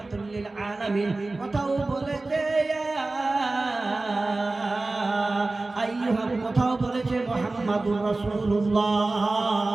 লিল আলামিন, কোথাও বলেছে ইয়া আইয়ুহা, কোথাও বলেছে মুহাম্মাদুর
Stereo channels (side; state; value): left; quieter; 3.2 dB